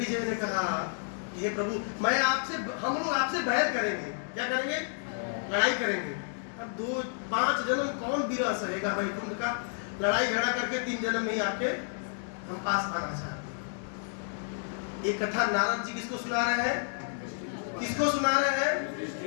ने कहा, हे प्रभु, मैं आपसे, हम लोग आपसे बैर करेंगे। क्या करेंगे? लड़ाई करेंगे। अब 5 जन्म कौन विरह सहेगा वैकुंठ का? लड़ाई झगड़ा करके 3 जन्म में ही आपके हम पास आना चाहते हैं। एक कथा नारद जी किसको सुना रहे हैं? किसको सुना रहे हैं?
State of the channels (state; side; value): silent; right; 57 dB below the other